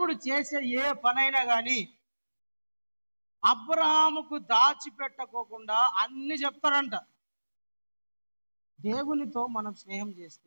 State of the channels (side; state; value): both; inverted; correlation -1.00